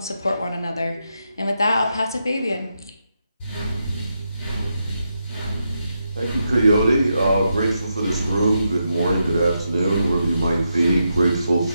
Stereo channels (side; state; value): both; inverted; correlation -0.84